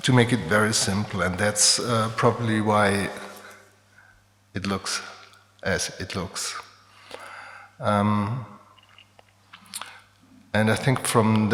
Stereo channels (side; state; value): both; identical; correlation 1.00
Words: to make it very simple. And that's probably why it looks as it looks. And I think from